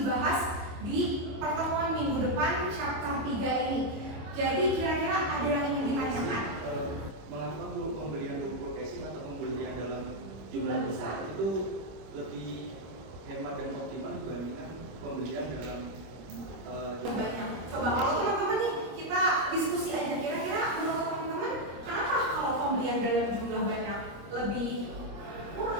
di pertemuan minggu depan chapter 3 ini. Jadi kira-kira ada yang ingin ditanyakan? Mengapa pembelian buku casing atau pembelian dalam jumlah besar itu lebih hemat dan optimal dibandingkan pembelian dalam banyak. Coba kalau teman-teman nih kita diskusi aja, kira-kira menurut teman-teman kenapa kalau pembelian dalam jumlah banyak lebih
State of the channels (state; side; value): late; left; 25 ms